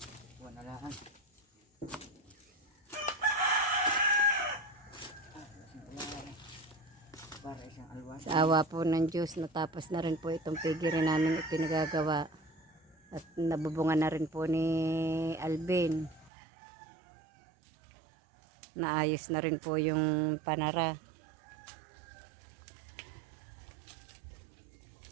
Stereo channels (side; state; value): left; drops out; at 16.3 s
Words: buwan na lang. Para isang alwas. Sa awa po ng Diyos, natapos na rin po itong pigiri namin ipinagagawa. At nabubungan na rin po ni Alvin. Naayos na rin po yung panara.